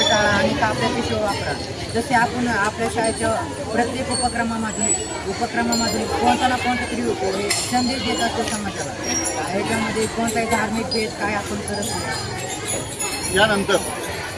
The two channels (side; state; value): both; identical; correlation 1.00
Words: टाळा आणि कापड्या पिशव्या वापरा. जसे आपण आपल्या शाळेच्या प्रत्येक उपक्रमामधून कोणता ना कोणता तरी संदेश देत असतो समाजाला. ह्याच्यामध्ये कोणताही धार्मिक भेद काय आपण करत नाही. यानंतर